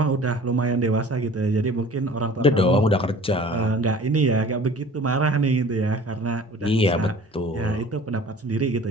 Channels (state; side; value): normal; both; correlation 0.46